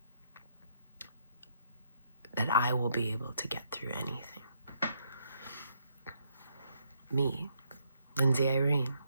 that I will be able to get through anything. Me, Lindsay Irene,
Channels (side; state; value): both; inverted; correlation -0.74